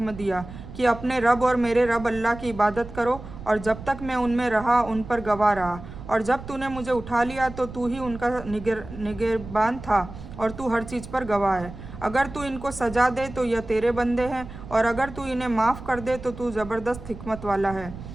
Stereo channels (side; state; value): right; noise; rumble, 13 dB below the sound